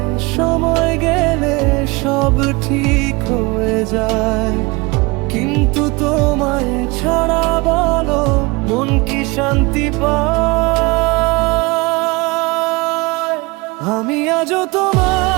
সময় গেলে সব ঠিক হয়ে যায়, কিন্তু তোমায় ছাড়া বলো মন কি শান্তি পায়? আমি আজও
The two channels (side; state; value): left; quieter; 25.3 dB